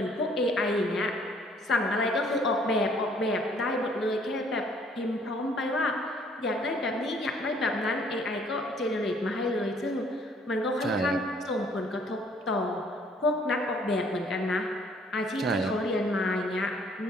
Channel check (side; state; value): both; normal; correlation 0.61